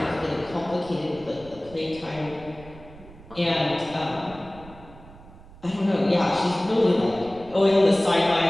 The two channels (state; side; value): noise; right; rumble, 20 dB below the sound